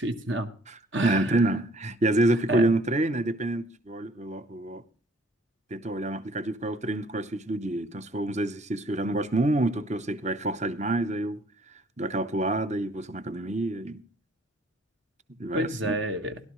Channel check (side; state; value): both; normal; correlation 0.58